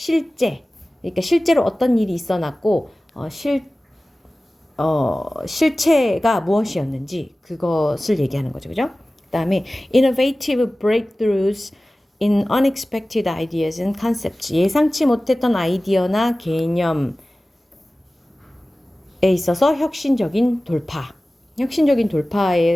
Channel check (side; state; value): both; normal; correlation 0.97